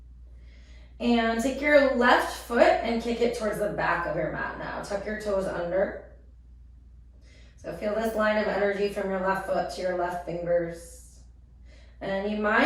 And take your left foot and kick it towards the back of your mat now. Tuck your toes under. So feel this line of energy from your left foot to your left fingers. And you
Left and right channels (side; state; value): both; identical; correlation 1.00